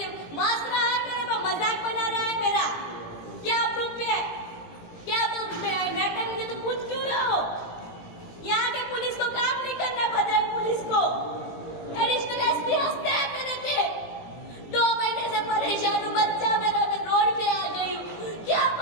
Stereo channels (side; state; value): right; late; 17 ms